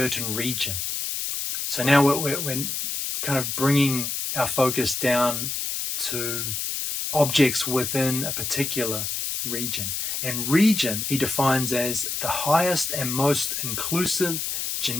region. So now we're kind of bringing our focus down to objects within a particular region. And region he defines as the highest and most inclusive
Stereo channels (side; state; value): left; noise; hiss, 2 dB below the sound